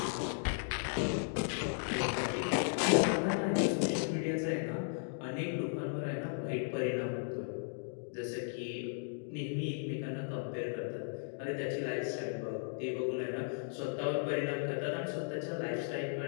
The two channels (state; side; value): silent; right; digital silence